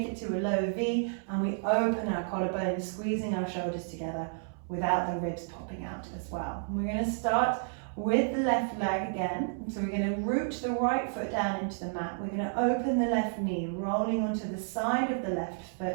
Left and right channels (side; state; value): left; silent; 57 dB below the other